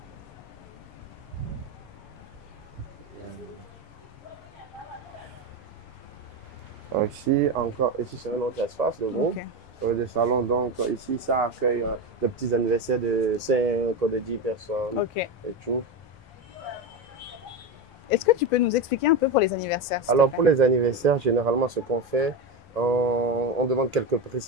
Ici, encore, ici c'est un autre espace de groupe, de salon. Donc ici, ça accueille des petits anniversaires de 5 ou de 10 personnes et tout. Est-ce que tu peux nous expliquer un peu pour les anniversaires? Alors pour les anniversaires, généralement ce qu'on fait, on demande quelques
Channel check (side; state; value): both; normal; correlation 0.16